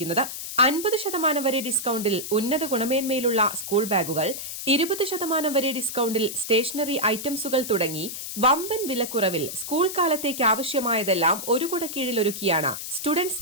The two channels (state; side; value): noise; left; hiss, 7 dB below the sound